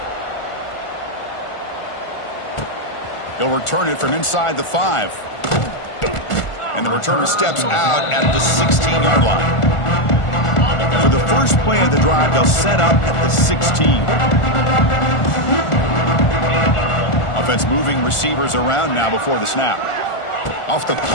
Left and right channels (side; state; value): right; late; 1.4 ms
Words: He'll return it from inside the 5. And the returner steps out at the 16-yard line. For the first play of the drive, they'll set up at the 16. Offense moving receivers around now before the snap. Off the